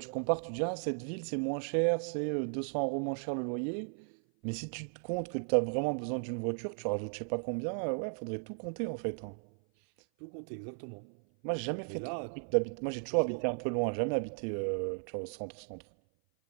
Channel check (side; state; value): left; silent; 54 dB below the other